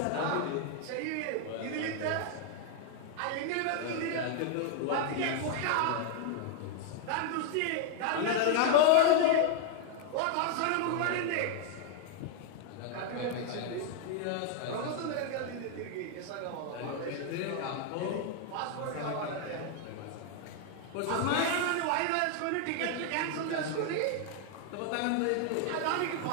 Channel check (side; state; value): both; different; correlation 0.00